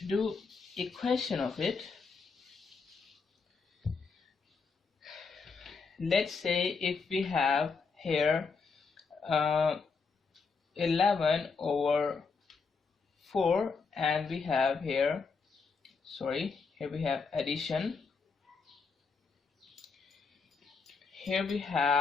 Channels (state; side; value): quieter; right; 4.9 dB